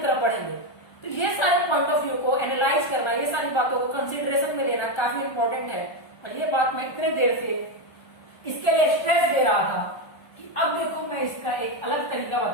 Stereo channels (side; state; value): right; late; 1.3 ms